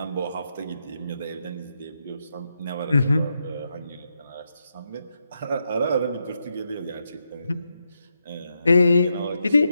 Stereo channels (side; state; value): both; inverted; correlation -0.83